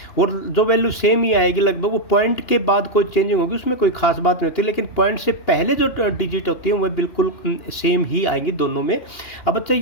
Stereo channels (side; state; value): right; late; 2.8 ms